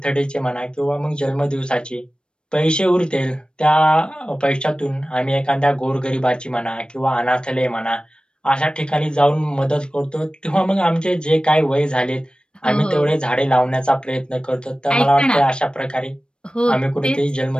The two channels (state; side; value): late; right; 0.053 ms